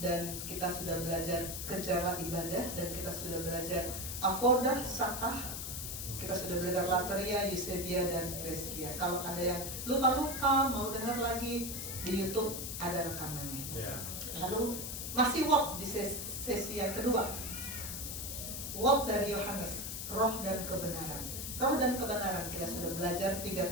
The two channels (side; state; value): left; noise; hiss, 5 dB below the sound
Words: kita sudah belajar kejarlah ibadah. Dan kita sudah belajar avodah, sakah. Kita sudah belajar Lateria, Eusebia, dan Preskia. Kalau ada yang lupa-lupa mau dengar lagi, di YouTube ada rekamannya. Lalu masih what di sesi yang kedua. What dari Yohanes, roh dan kebenaran. Roh dan kebenaran, kita sudah belajar 3